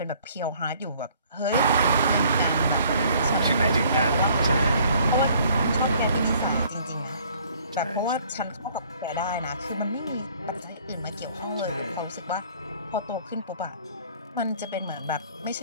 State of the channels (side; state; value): both; inverted; correlation -0.57